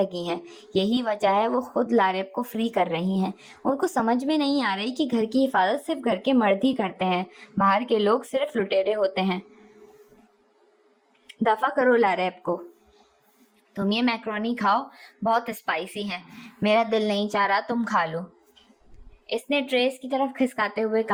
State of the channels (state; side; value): identical; both; correlation 1.00